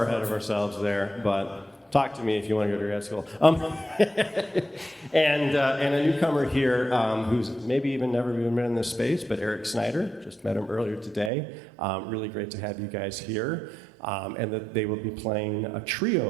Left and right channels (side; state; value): left; drops out; at 11.3 s